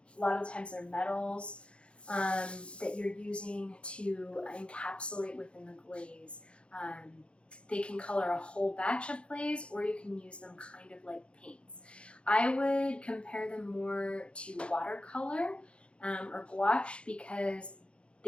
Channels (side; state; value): right; late; 0.058 ms